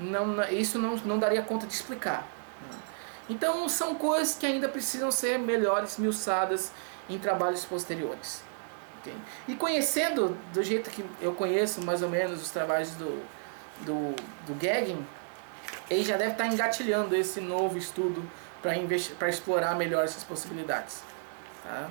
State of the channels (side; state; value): left; silent; digital silence